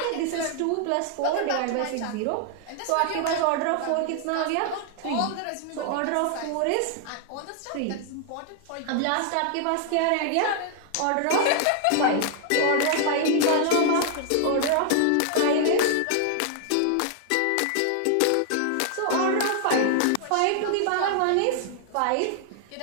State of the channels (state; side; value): different; both; correlation 0.00